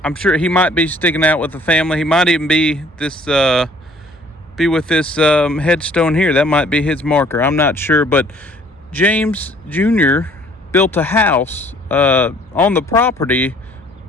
I'm sure he might be sticking out with the family. He might even be with this headstone here. That might be his marker. I'm not sure, but James Jr. built a house on the property,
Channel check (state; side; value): normal; both; correlation 0.57